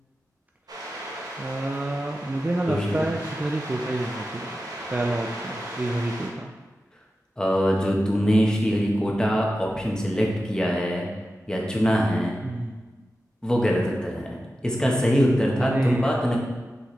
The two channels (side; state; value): both; normal; correlation 0.92